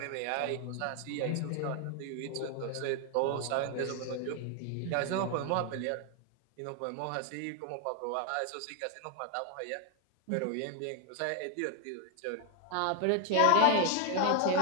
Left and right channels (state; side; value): different; both; correlation 0.01